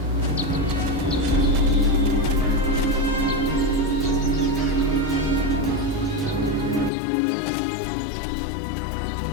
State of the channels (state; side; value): drops out; right; at 6.9 s